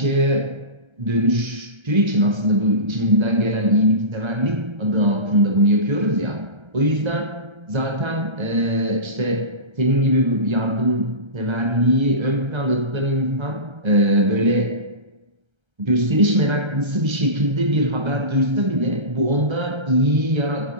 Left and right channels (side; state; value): left; late; 1.3 ms